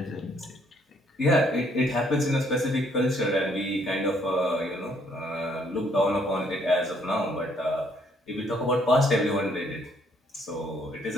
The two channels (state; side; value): normal; both; correlation 0.67